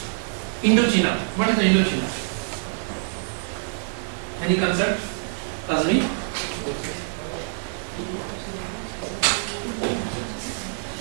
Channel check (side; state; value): left; silent; digital silence